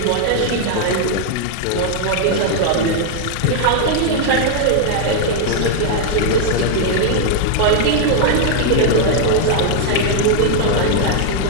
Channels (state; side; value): different; both; correlation 0.00